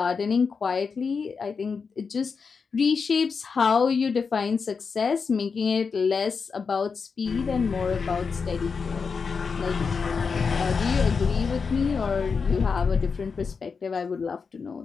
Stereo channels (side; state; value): right; quieter; 5.3 dB